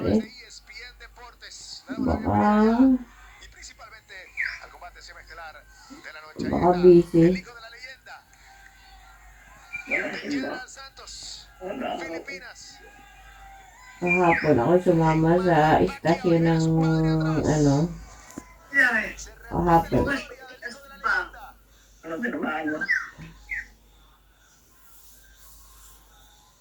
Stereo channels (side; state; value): both; identical; correlation 1.00